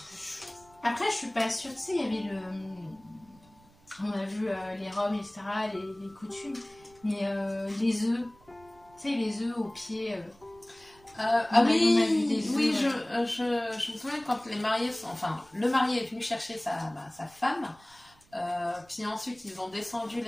Après, je suis pas sûre. Tu sais, il y avait on a vu les robes, etc., les coutumes. Mais les œufs. Tu sais, les œufs au pied. Oui, je me souviens quand les mariés le marié est venu chercher sa femme, puis ensuite ils ont descendu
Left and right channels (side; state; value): right; noise; rumble, 28 dB below the sound